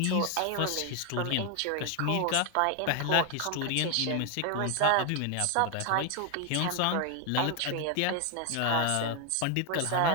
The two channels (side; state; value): both; different; correlation 0.01